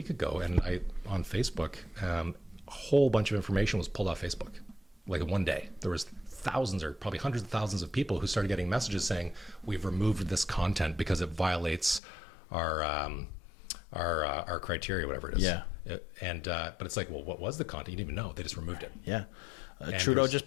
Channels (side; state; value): right; drops out; at 12.0 s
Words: ago, and on Facebook, a whole bunch of information was pulled off Facebook. Like in one day, there was thousands or probably hundreds of thousands of people who started getting messages saying, we've removed this content because it violates our our criteria, whatever it is. Yeah. But it's like, well, what was the content? You didn't even know. They just removed it. Yeah. Trudeau just